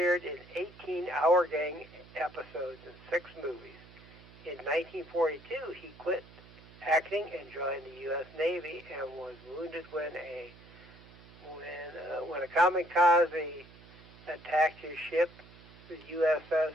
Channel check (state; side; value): noise; right; hum, 21 dB below the sound